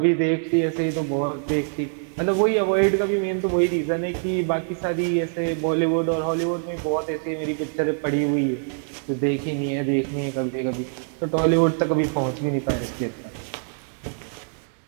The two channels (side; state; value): left; silent; digital silence